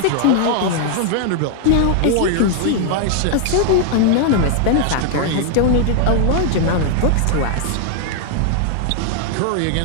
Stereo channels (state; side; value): different; both; correlation 0.00